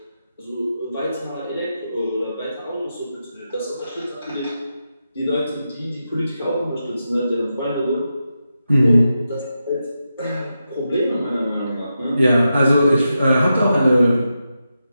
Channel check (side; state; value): both; inverted; correlation -0.88